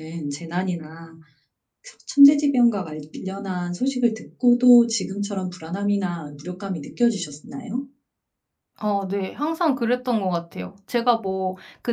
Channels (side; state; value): both; identical; correlation 1.00